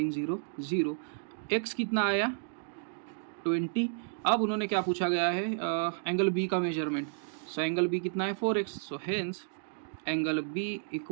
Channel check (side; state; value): left; silent; digital silence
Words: 0 0। x कितना आया 20। अब उन्होंने क्या पूछा गया है, एंगल B का मेजरमेंट। सो एंगल B कितना है 4x, so hence angle B